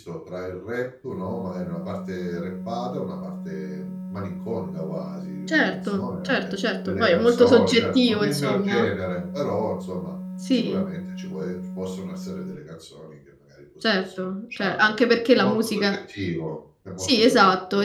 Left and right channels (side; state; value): both; identical; correlation 1.00